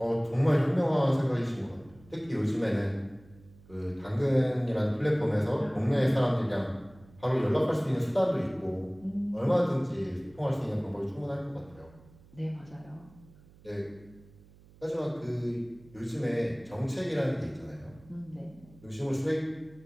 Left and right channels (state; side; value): noise; right; hum, 25 dB below the sound